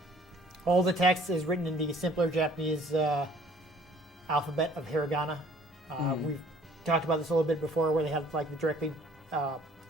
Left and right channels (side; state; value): both; normal; correlation 0.56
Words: all the text is written in the simpler Japanese alphabet of hiragana. We've talked about this a little bit before, where they have like the directly